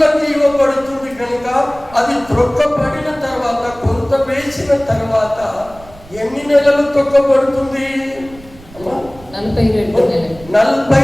ఇవ్వబడుతుంది కనుక అది త్రొక్కబడిన తర్వాత, కొంత వేసిన తర్వాత ఎన్ని నెలలు తొక్కబడుతుంది?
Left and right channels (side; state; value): right; noise; rumble, 21 dB below the sound